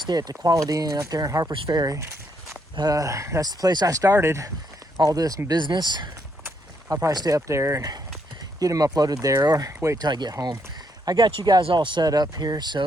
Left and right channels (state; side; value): normal; both; correlation 0.75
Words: at the Quality Inn up there in Harper's Ferry. That's the place I started all this business. I'll probably stay up there and get them uploaded there, or wait till I get home. I got you guys all set up here,